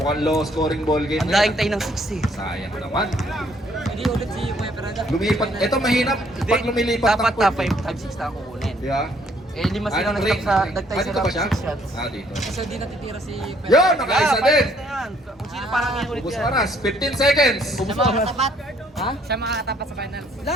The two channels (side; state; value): both; normal; correlation 0.65